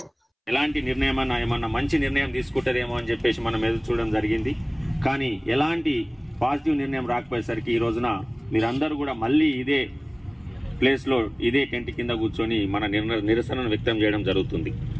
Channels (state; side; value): identical; both; correlation 1.00